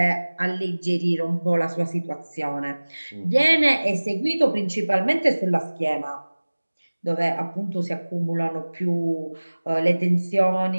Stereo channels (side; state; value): both; inverted; correlation -1.00